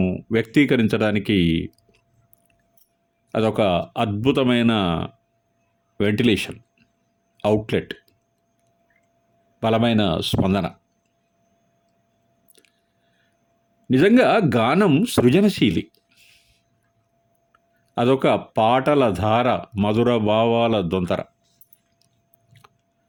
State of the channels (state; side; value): identical; both; correlation 1.00